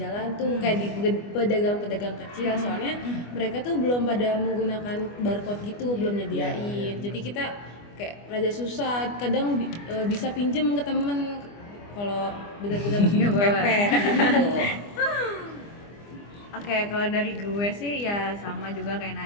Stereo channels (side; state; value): right; late; 25 ms